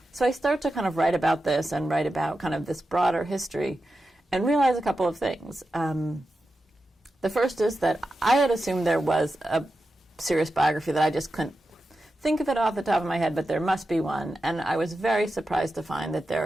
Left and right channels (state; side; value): normal; both; correlation 0.90